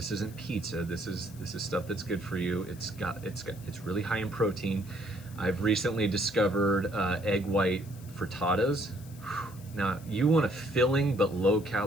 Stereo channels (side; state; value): left; noise; hiss, 21 dB below the sound